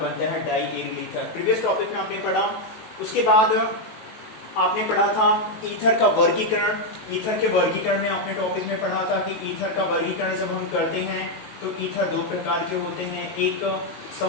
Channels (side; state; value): right; late; 18 ms